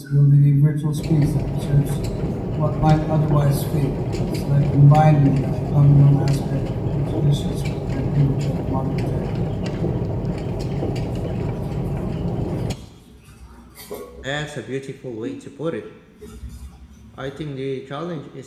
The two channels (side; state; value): both; identical; correlation 1.00